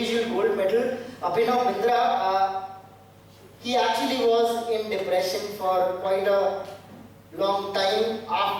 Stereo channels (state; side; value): identical; both; correlation 1.00